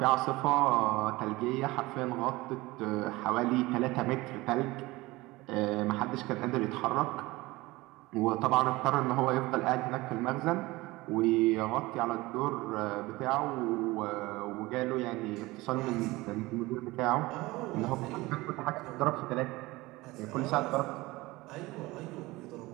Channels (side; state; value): left; quieter; 20.6 dB